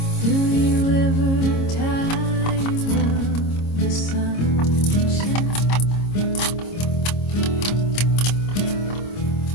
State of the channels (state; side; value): late; right; 26 ms